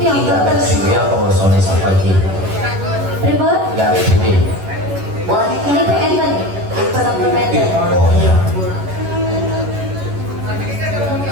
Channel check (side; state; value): left; late; 11 ms